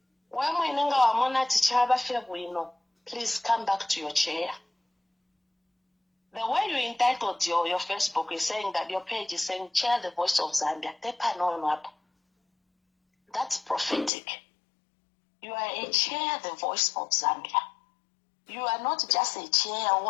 When we know our mona tichaba febwino, please come back to your chair. The way you entitled your Facebook is saying that your page is saying chair the voice of Zambia. That's prophetic. You are a chair the voice of Zambia. You are not just a chair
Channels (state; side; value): drops out; right; at 14.1 s